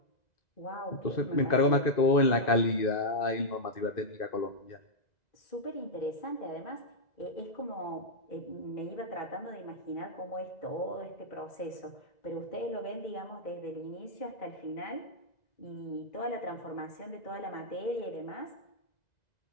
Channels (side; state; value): right; late; 2.0 ms